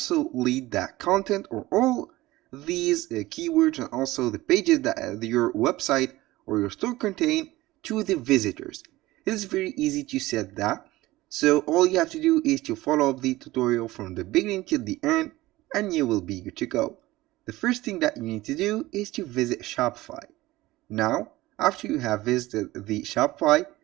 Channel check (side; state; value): left; quieter; 18.2 dB